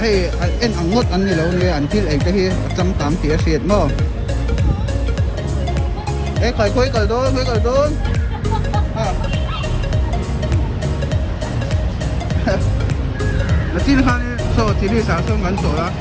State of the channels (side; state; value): both; identical; correlation 1.00